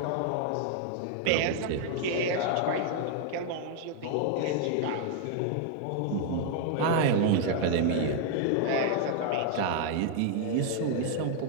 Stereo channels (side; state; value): both; different; correlation 0.00